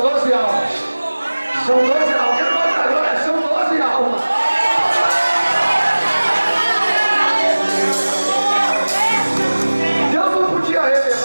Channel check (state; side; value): inverted; both; correlation -1.00